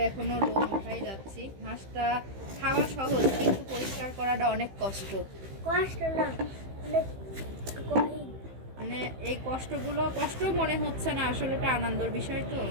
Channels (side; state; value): left; late; 15 ms